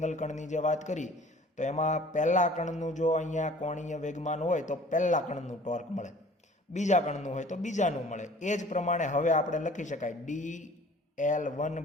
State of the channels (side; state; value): both; normal; correlation 0.49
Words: કણની જે વાત કરી તો એમાં પહેલા કણનું જો અહીંયા કોણીય વેગમાન હોય તો પહેલા કણનું ટોર્ક મળે, બીજા કણનું હોય તો બીજાનું મળે. એ જ પ્રમાણે હવે આપણે લખી શકાય